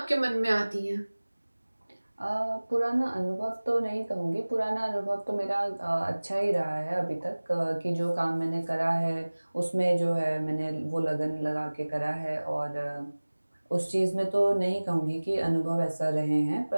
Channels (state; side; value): inverted; both; correlation -1.00